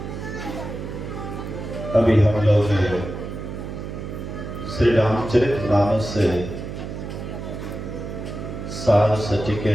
अभी हम लोग श्री रामचरितमानस से सार सटी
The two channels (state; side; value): noise; right; hum, 8 dB below the sound